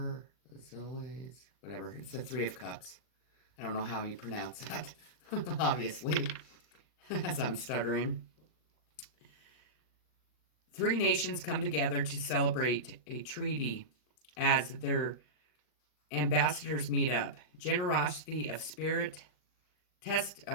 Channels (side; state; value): right; late; 39 ms